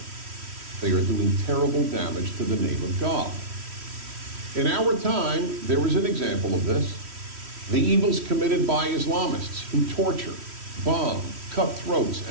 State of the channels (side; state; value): left; late; 3.1 ms